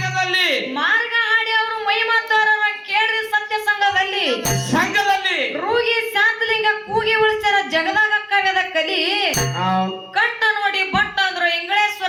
ಹಾಡಿ ಅವರು ಮೈ ಮಾತಾರ ಕೇಳ್ರಿ ಸತ್ಯ ಸಂಘದಲ್ಲಿ ರೂಗಿ ಶಾಂತಲಿಂಗ ಕೂಗಿ ಉಳಿಸ್ಯಾರ ಜಗದಾಗ ಕವ್ಯದ ಕಲಿ ಕಟ್ಟ ನೋಡಿ ಬಟ್ಟಾದ್ರು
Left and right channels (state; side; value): identical; both; correlation 1.00